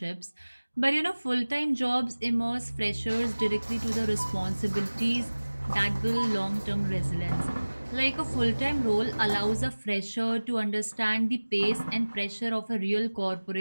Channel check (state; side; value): inverted; both; correlation -1.00